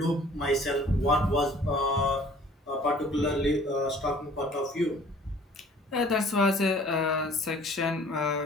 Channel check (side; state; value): both; normal; correlation 0.52